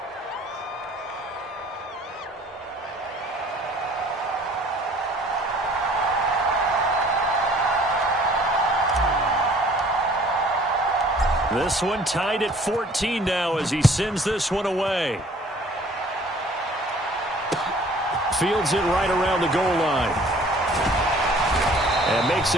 This one tied at 14 now as he sends this one away. Fields it right around the goal line. And makes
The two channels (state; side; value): normal; both; correlation 0.54